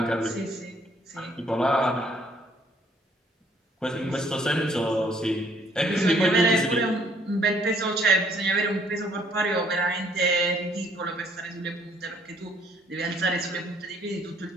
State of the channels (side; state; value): both; normal; correlation 0.64